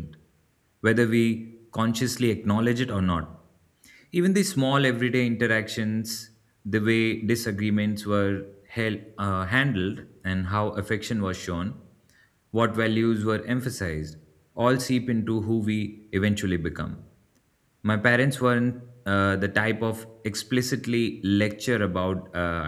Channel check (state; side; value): identical; both; correlation 1.00